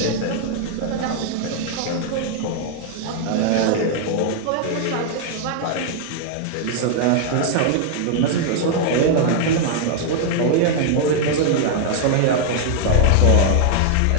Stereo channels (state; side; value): different; both; correlation 0.00